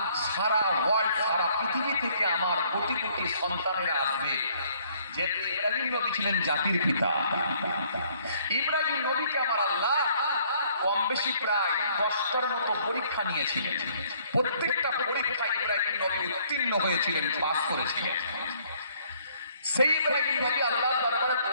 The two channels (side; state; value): both; inverted; correlation -0.63